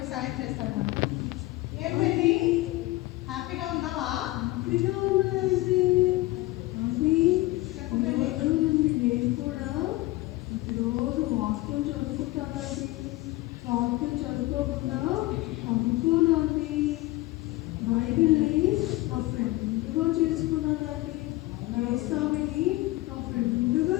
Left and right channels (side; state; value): right; quieter; 19.2 dB